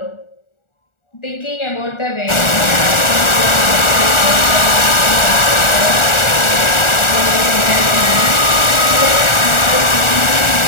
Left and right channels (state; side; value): late; right; 1.4 ms